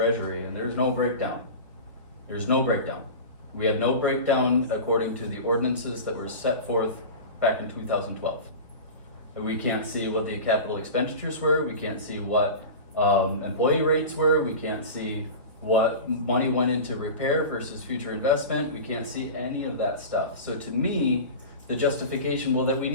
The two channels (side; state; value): both; inverted; correlation -0.31